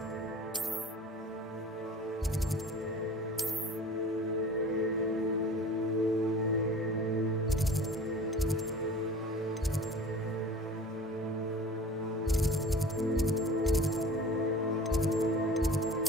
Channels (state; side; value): normal; both; correlation 0.41